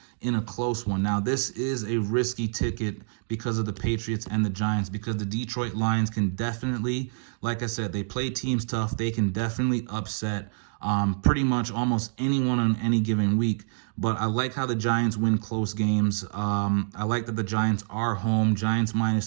in a close one. Now, this is a risky ticket because of the Patriots and the Giants, because the Detroit Lions can definitely, like I said, they play teams tough. They can definitely upset pretty much almost anyone on any given week. But I like how the Giants win close games. I like that the Giants are home. Giants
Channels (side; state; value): left; silent; digital silence